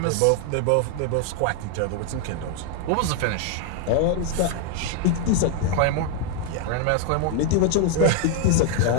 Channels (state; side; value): different; both; correlation 0.01